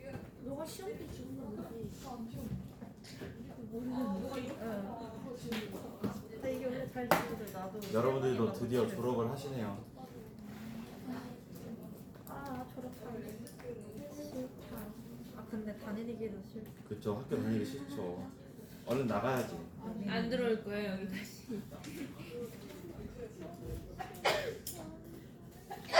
너가 시험 때 주는 거지. 모르겠는데. 근데 이게 원래 잘 지거든. 나도. 여러분들도 드디어 졸업을 하시네요. 아 졸업하기 싫다. 아 근데 다니기도 싫다. 그쵸, 학교 다니기 싫죠. 얼른 나가야지. 안 들어올 거예요 여기까지.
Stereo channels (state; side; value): identical; both; correlation 1.00